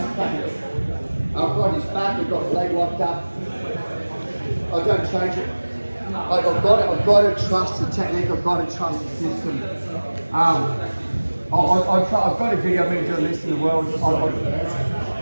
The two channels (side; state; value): both; inverted; correlation -1.00